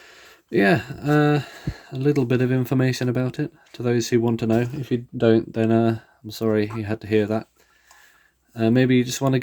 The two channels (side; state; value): both; identical; correlation 1.00